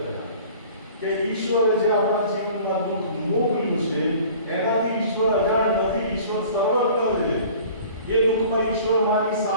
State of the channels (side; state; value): both; inverted; correlation -0.47